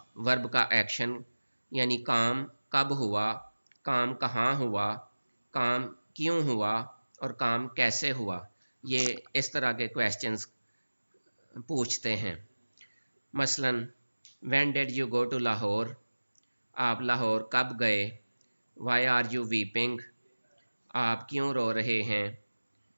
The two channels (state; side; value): inverted; both; correlation -1.00